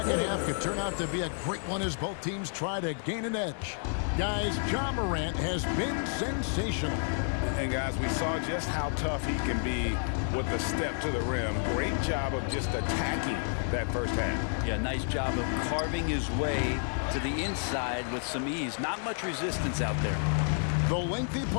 half could turn out to be a great one as both teams try to gain an edge. Guys, Ja Morant has been sensational. And guys, we saw just how tough he can be with the step to the rim. Great job of just attacking that first half. Yeah, nice job of carving his way to the inside with some ease. Not much resistance out there. The lengthy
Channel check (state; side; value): silent; right; 58 dB below the other